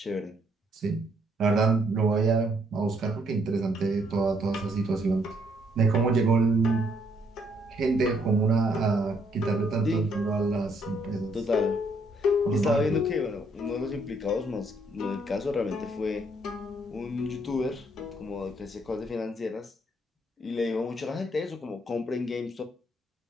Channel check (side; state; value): both; normal; correlation 0.70